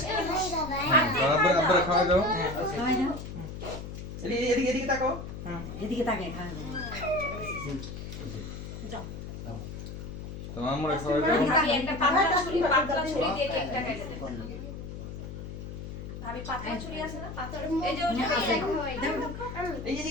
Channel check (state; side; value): noise; left; hum, 9 dB below the sound